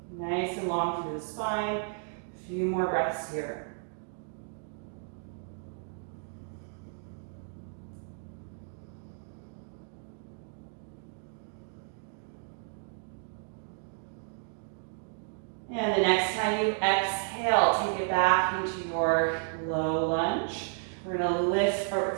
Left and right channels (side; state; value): left; silent; digital silence